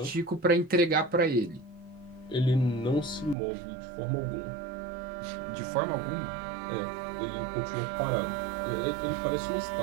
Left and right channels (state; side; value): drops out; left; at 3.4 s